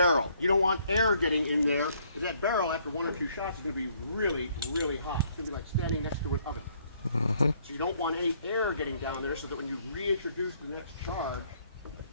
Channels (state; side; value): inverted; both; correlation -0.66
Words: You don't want air getting in there, because that barrel, after 1 or 2 shots, is going to be really, really hot. It's going to be like standing next to an oven. So you don't want any air getting down there, so that when you reintroduce the next charge,